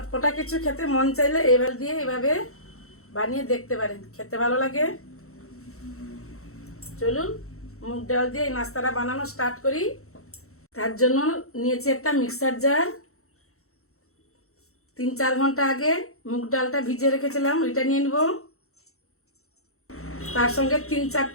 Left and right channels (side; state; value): right; late; 0.63 ms